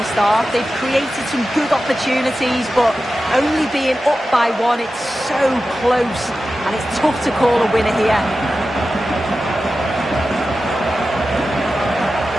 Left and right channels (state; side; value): normal; both; correlation 0.93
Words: half. They've created some good opportunities, but only being up by one, it's so close, and it's tough to call a winner here.